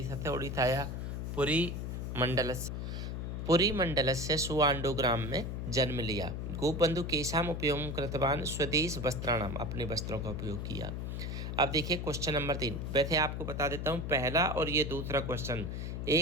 से उड़ीसाया पुरी मंडल से सुआंडो ग्राम में जन्म लिया। गोपबंधु केशाम उपयोग कृतवान, स्वदेश वस्त्राणाम, अपने वस्त्रों का उपयोग किया। अब देखिए क्वेश्चन नंबर 3, वैसे आपको बता देता हूँ पहला और ये दूसरा क्वेश्चन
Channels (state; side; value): noise; left; hum, 4 dB below the sound